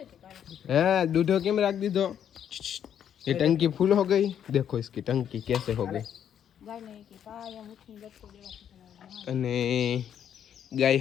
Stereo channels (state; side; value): quieter; right; 9.3 dB